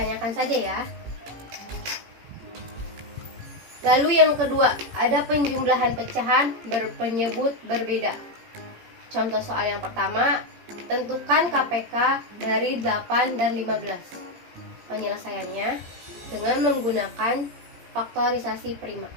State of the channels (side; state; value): left; late; 18 ms